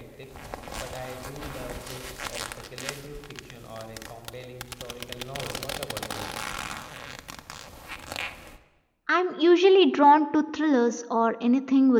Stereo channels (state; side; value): identical; both; correlation 1.00